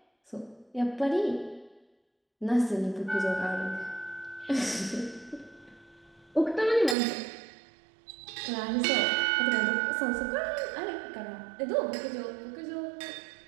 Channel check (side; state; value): left; drops out; at 7.0 s